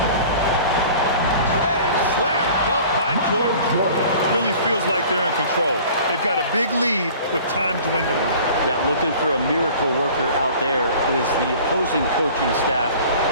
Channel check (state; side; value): inverted; both; correlation -0.46